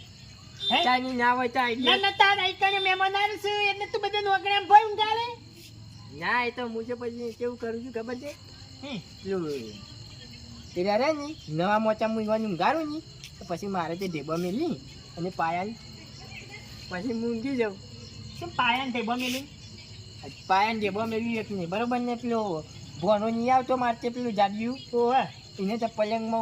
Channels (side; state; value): both; identical; correlation 1.00